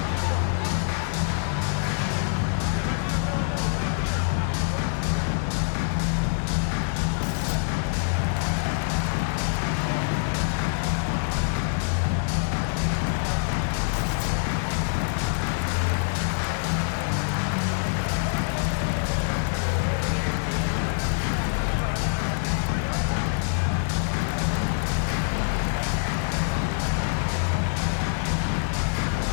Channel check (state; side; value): silent; right; 57 dB below the other